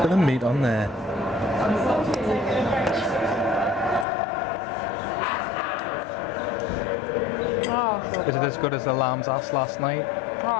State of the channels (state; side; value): drops out; right; at 4.0 s